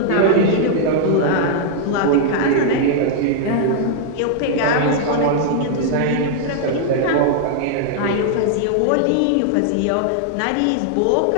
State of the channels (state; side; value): different; both; correlation -0.01